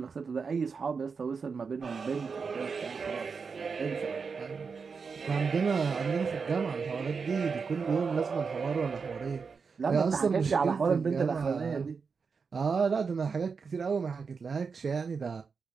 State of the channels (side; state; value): left; quieter; 5.3 dB